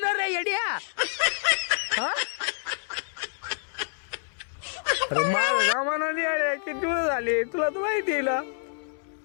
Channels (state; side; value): silent; right; digital silence